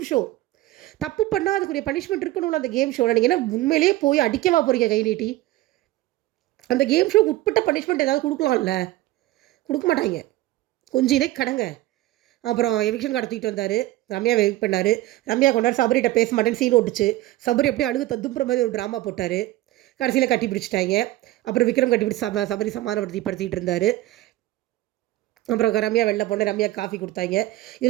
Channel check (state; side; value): quieter; left; 16.6 dB